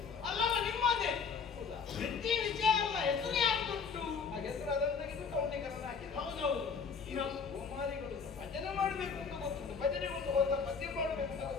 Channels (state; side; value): quieter; right; 5.7 dB